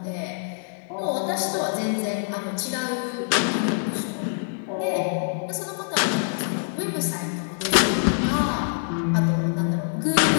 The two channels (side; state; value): right; silent; 62 dB below the other